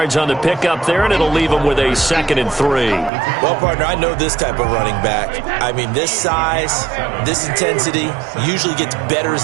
on the pickup there, and it'll leave them with a 2nd and 3. Well, partner, I know this type of running back. I mean, this size, this intensity usually gets better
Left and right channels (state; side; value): drops out; left; at 3.1 s